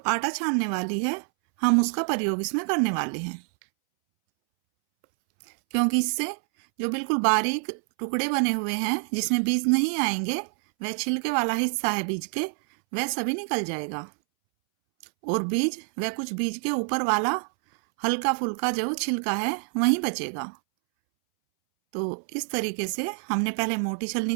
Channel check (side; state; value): left; silent; 61 dB below the other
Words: आटा छानने वाली है, हम उसका प्रयोग इसमें करने वाले हैं, क्योंकि इससे जो बिल्कुल बारीक टुकड़े बने हुए हैं जिसमें बीज नहीं आएंगे, वह छिलके वाला हिस्सा है बीज के, वह सभी निकल जाएगा और बीज वह कुछ बीज के ऊपर वाला हल्का फुल्का जो छिलका है वहीं बचेगा। तो इस तरीके से हमने पहले मोटी छलनी